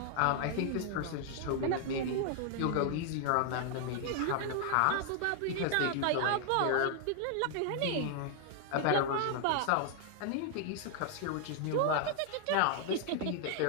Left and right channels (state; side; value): different; both; correlation 0.00